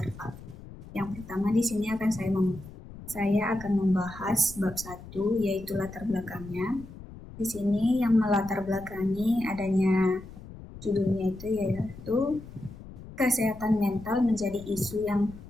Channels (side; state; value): left; noise; rumble, 15 dB below the sound